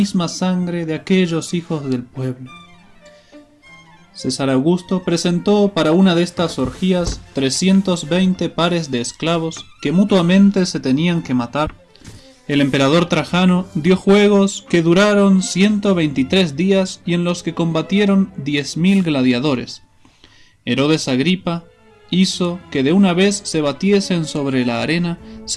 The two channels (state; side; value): identical; both; correlation 1.00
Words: sangre de aquellos hijos del pueblo. César Augusto presentó para una de estas orgías 320 pares de esclavos que mutuamente se tenían que matar. El emperador Trajano dio juegos que duraron 123 días y en los que combatieron 10.000 gladiadores. Herodes Agripa hizo que de una vez se batiesen sobre la arena